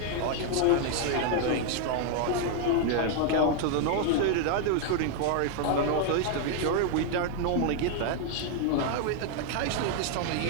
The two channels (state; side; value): different; both; correlation 0.00